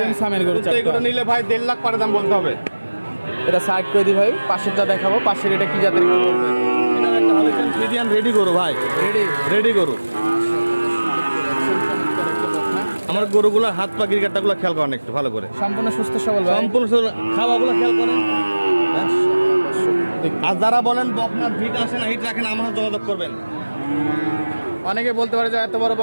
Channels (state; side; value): inverted; both; correlation -1.00